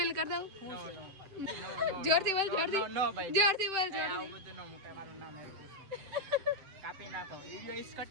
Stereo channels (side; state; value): left; late; 7.8 ms